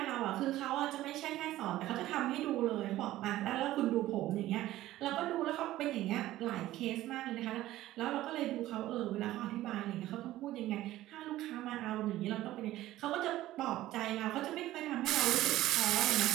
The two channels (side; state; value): left; quieter; 15.2 dB